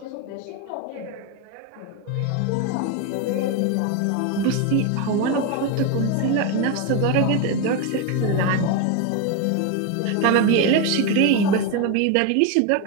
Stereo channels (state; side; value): different; both; correlation 0.02